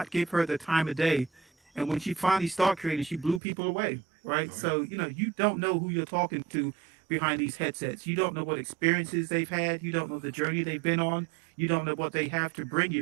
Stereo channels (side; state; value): left; drops out; at 3.4 s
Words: give her the time of day, and when she finally started creating, she blew people away, right? So you don't know who you're talking to behind these headsets. You don't know what experiences they've had. You don't know the journey they've been on. You don't know what they have to bring